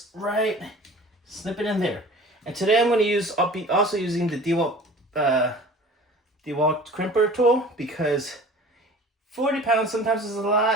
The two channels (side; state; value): both; normal; correlation 0.44